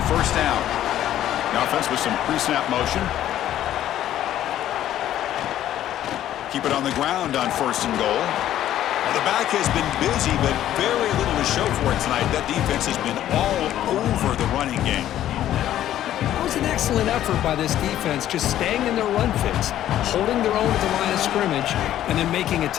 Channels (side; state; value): right; quieter; 12.2 dB